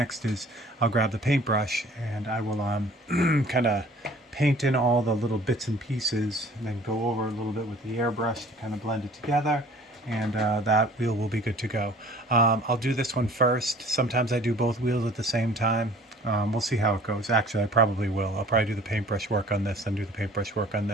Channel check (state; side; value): normal; both; correlation 0.50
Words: is I'll grab the paintbrush and I will kind of paint in all the little bits and pieces and then go over a little bit with the airbrush to kind of blend it together, and that wheel will be good to go. I'll do this one first. Sometimes I do both wheels at the same time. We'll see how it goes. Actually, I probably will. I'll probably do the paintbrush work on this, then do the paintbrush work on